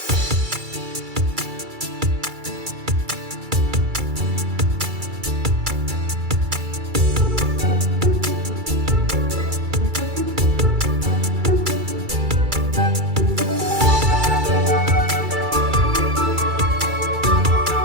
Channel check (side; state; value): left; late; 2.3 ms